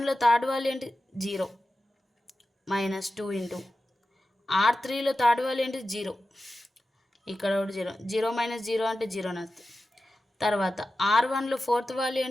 థర్డ్ వాల్యూ ఏంటి 0, మైనస్ 2 ఇంటూ R3లో థర్డ్ వాల్యూ ఏంటి 0, ఇక్కడ ఒకటి 0, 0 మైనస్ 0 అంటే 0 వస్తుంది. తర్వాత R1లో ఫోర్త్ వాల్యూ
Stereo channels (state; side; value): normal; both; correlation 0.93